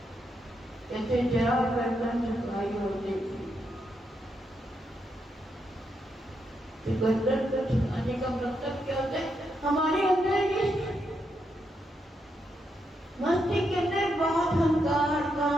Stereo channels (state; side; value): normal; both; correlation 0.81